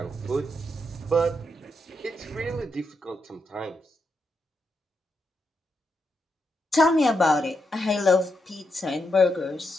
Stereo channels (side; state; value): both; normal; correlation 0.83